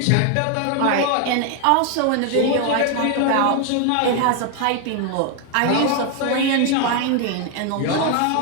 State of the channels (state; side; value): different; both; correlation 0.01